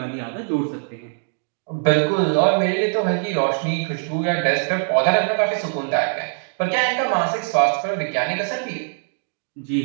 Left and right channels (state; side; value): silent; left; digital silence